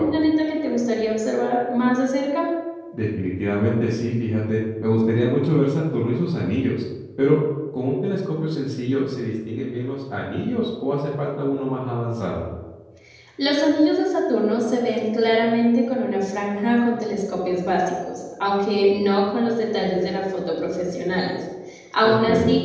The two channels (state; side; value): identical; both; correlation 1.00